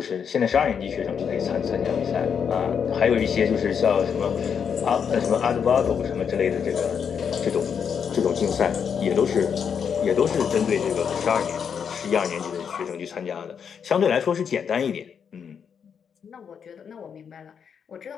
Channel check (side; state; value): right; quieter; 7.1 dB